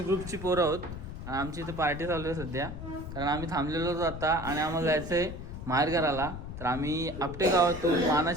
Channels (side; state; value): left; noise; rumble, 9 dB below the sound